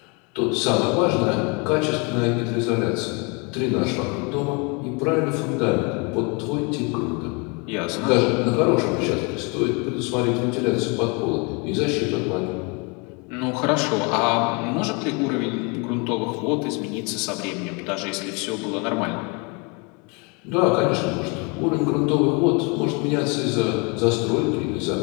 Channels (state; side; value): quieter; right; 31.3 dB